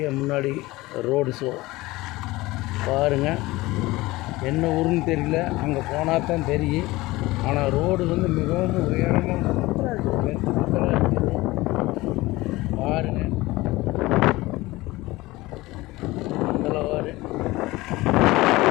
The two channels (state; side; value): quieter; right; 19.8 dB